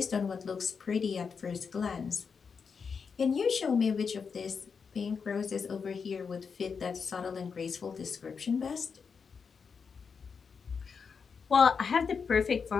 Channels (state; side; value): quieter; right; 5.8 dB